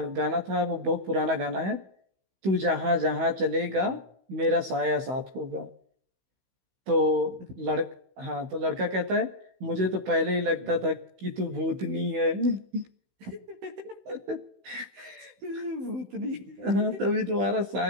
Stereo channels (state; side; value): late; left; 16 ms